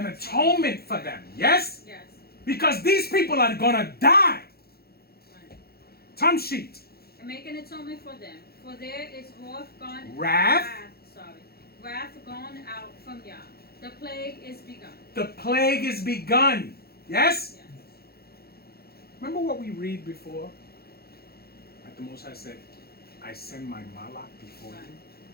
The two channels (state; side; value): late; right; 0.46 ms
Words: atonement for them. Yes? Yes. Because these people are gonna die. Right. Tamshi. And make an atonement for them, for there is Wrath gone out from Yah. The plague is begun. The plague is begun. Yes? Yes. Remember what we read before? Like the Most High said, I send my malach before